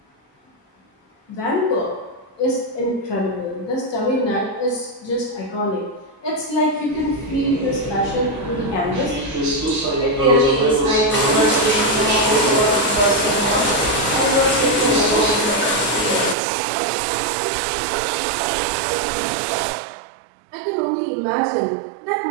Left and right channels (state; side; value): drops out; left; at 16.4 s